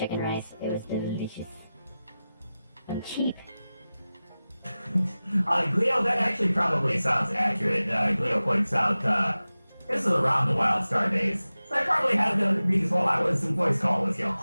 rice. It was delicious and cheap. Gleo, that actually probably sounds accurate. Gleo points out, this is around the Wild Star days. So I probably had these while I was in voice call with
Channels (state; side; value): inverted; both; correlation -0.96